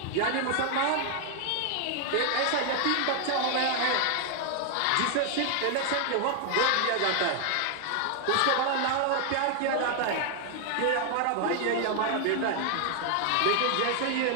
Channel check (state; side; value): different; both; correlation 0.00